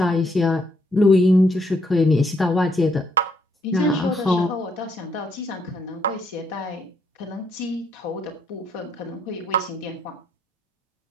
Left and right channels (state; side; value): normal; both; correlation 0.73